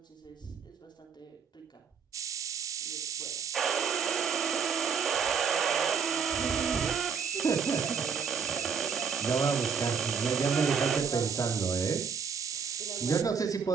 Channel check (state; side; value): quieter; left; 6.3 dB